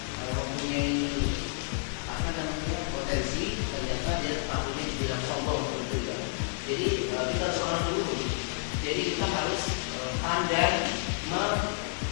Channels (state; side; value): silent; right; digital silence